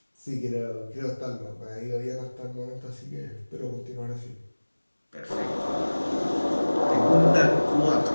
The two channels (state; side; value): inverted; both; correlation -1.00